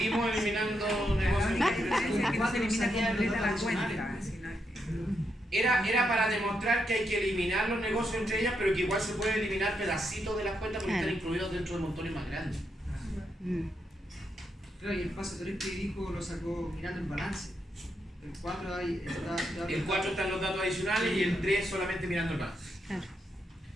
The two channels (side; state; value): both; normal; correlation 0.81